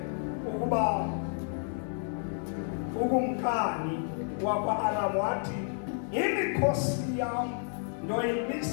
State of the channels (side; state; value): right; silent; 57 dB below the other